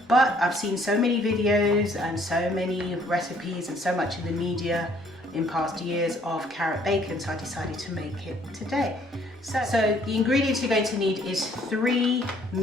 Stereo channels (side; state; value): both; normal; correlation 0.62